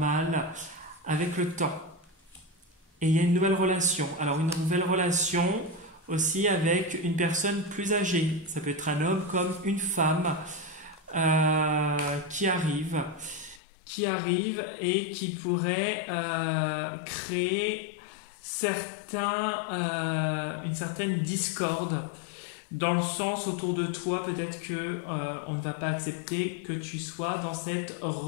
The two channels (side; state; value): right; drops out; at 13.6 s